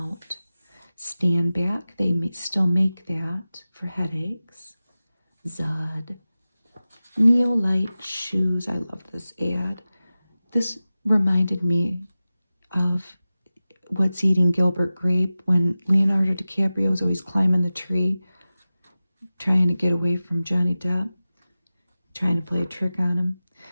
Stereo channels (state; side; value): inverted; both; correlation -0.96